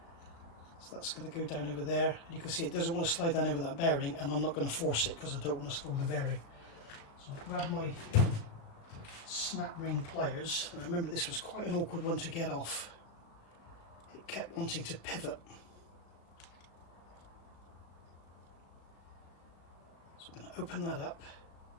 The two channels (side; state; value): right; late; 36 ms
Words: So that's going to go down over there, and you can see it doesn't want to slide down over that bearing, and I'm not going to force it because I don't want to spoil the bearing. So I'll grab my snap ring pliers, and remember this was quite an awkward one to get off. It kept wanting to pivot. So I'm going to open that up,